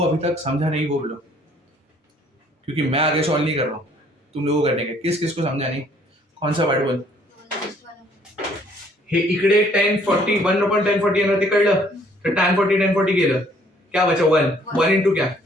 अभी तक समझा नहीं वो बोलो, क्योंकि मैं आगे सॉल्व नहीं कर रहा हूँ, तुम लोगों को करने का। किस को समझा नहीं? कौन सा वर्ड बोल? हे इकडे tan 40 1 upon tan 40 येणार, ते कळलं? तर tan 40 गेलं, क्या बचा 1 into क्या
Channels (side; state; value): both; normal; correlation 0.62